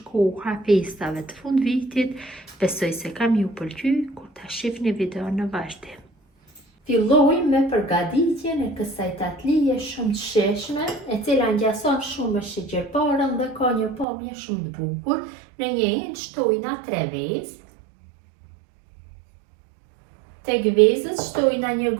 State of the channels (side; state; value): left; drops out; at 14.1 s